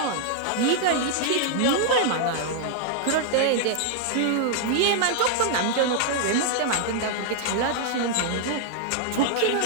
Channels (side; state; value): both; different; correlation -0.01